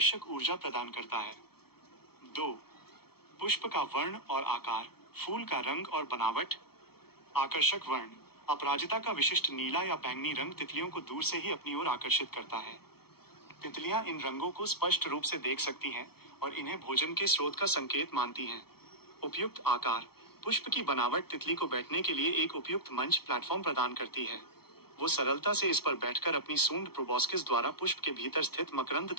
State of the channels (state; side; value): late; right; 0.95 ms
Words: ऊर्जा प्रदान करता है। 2. पुष्प का वर्ण और आकार, फूल का रंग और बनावट। आकर्षक वर्ण, अपराजिता का विशिष्ट नीला या बैंगनी रंग तितलियों को दूर से ही अपनी ओर आकर्षित करता है। तितलियां इन रंगों को स्पष्ट रूप से देख सकती हैं और इन्हें भोजन के स्रोत का संकेत मानती हैं। उपयुक्त आकार, पुष्प की बनावट तितली को बैठने के लिए एक उपयुक्त मंच प्लेटफॉर्म प्रदान करती है। वो सरलता से इस पर बैठकर अपनी सूंड प्रोबोस्किस द्वारा पुष्प के भीतर स्थित मकरंद